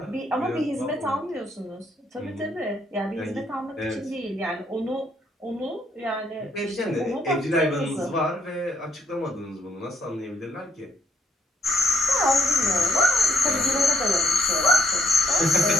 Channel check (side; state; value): both; normal; correlation 0.70